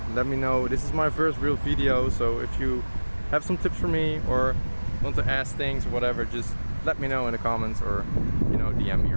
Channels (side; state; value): both; inverted; correlation -1.00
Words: This is my first real video, so if you have some tips for me or want to ask things or whatever, just let me know in the comments, or you know, DM me